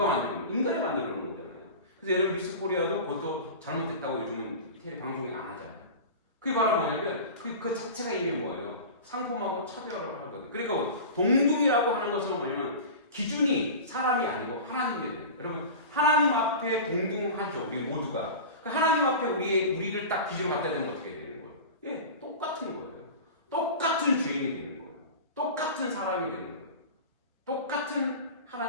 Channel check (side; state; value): both; inverted; correlation -0.32